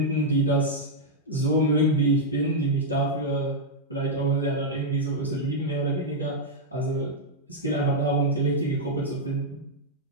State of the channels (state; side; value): normal; both; correlation -0.04